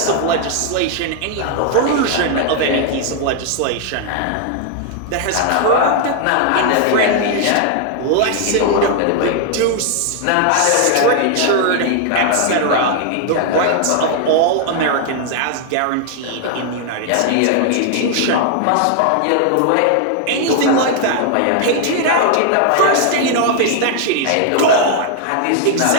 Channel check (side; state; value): both; different; correlation 0.00